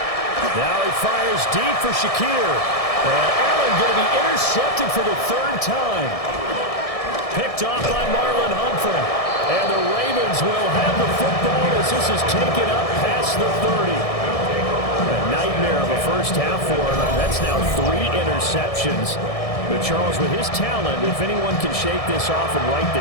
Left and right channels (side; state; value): right; late; 1.6 ms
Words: Now he fires deep for Shakir. And Allen going to be intercepted for the 3rd time. Picked off by Marlon Humphrey. And the Ravens will have the football as this is taken up past the 30. A nightmare of a first half for him. That's now 3 interceptions. But Charles, with his talent, if anyone can shake this off and right